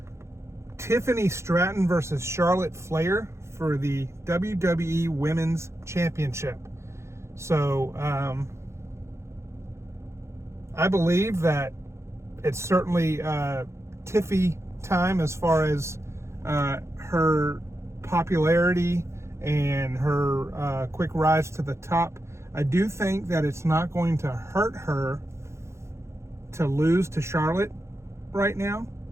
Tiffany Stratton versus Charlotte Flair for the WWE Women's Championship. So I believe that it's certainly Tiffy time as far as her popularity and her quick rise to the top. I do think that it's not going to hurt her to lose to Charlotte right now.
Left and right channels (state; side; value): late; left; 0.13 ms